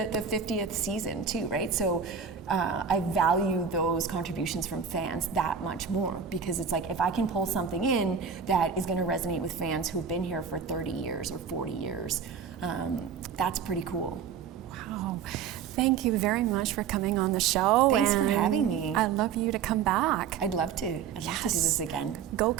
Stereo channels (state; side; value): quieter; left; 6.8 dB